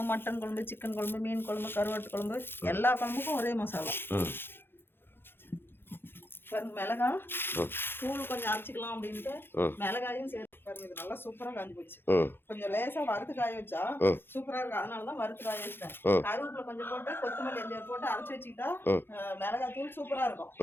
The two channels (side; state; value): right; late; 0.10 ms